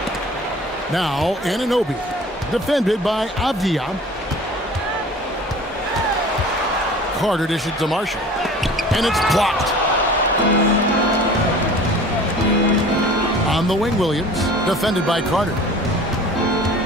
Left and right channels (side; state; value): both; normal; correlation 0.44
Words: Now Anunoby. Defended by Avdia. Carter dishes to Marshall. And it's blocked. On the wing, Williams. Defended by Carter.